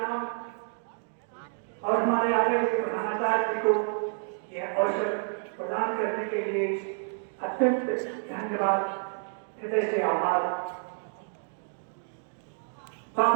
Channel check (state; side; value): silent; left; 58 dB below the other